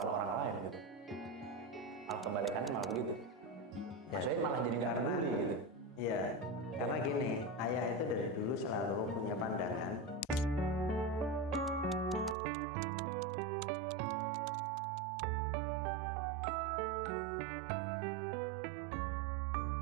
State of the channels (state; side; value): drops out; left; at 12.4 s